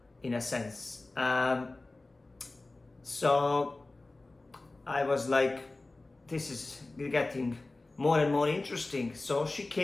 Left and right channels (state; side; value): quieter; right; 3.1 dB